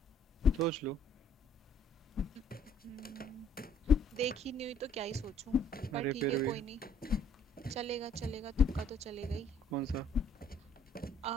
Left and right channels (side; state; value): both; normal; correlation 0.60